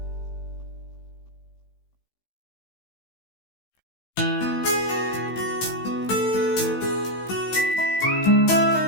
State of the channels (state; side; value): late; right; 16 ms